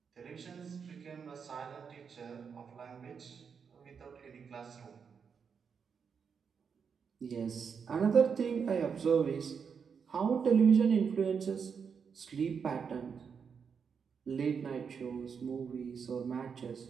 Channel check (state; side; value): quieter; left; 6.4 dB